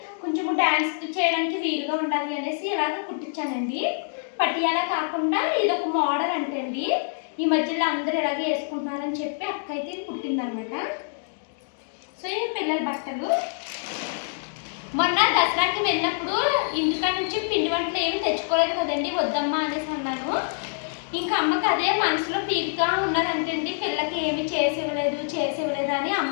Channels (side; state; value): right; silent; digital silence